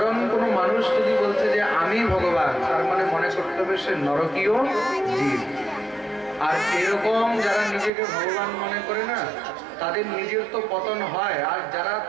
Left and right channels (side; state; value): left; drops out; at 7.9 s